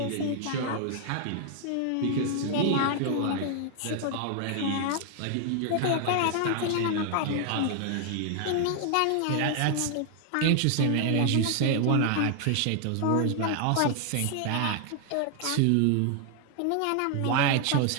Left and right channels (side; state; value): both; different; correlation 0.00